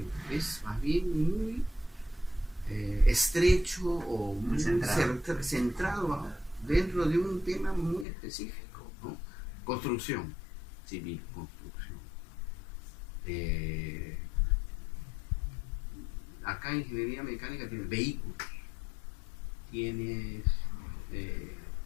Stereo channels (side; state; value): right; drops out; at 8.1 s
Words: es más bien muy estrecho o muy centrado dentro de un tema muy específico, ¿no? Construcción civil, construcción. Acá en ingeniería mecánica tienes vehículos, tienes